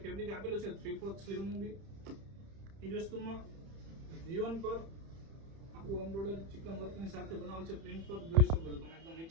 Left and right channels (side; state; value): left; late; 30 ms